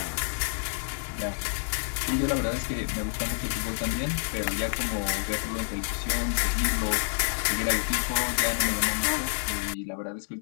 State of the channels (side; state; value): right; silent; 59 dB below the other